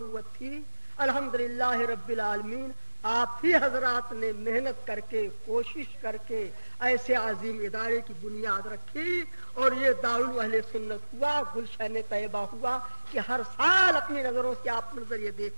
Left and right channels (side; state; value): both; inverted; correlation -1.00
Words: تھی۔ الحمدللہ رب العالمین، آپ ہی حضرات نے محنت کر کے، کوشش کر کے ایسے عظیم ادارے کی بنیاد رکھی اور یہ دارالعلوم اہل سنت ہوا، گلشن طیبہ ہوا کہ ہر سال اپنی نظروں سے آپ منظر یہ